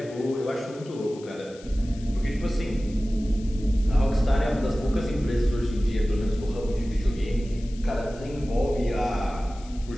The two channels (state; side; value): noise; left; hiss, 22 dB below the sound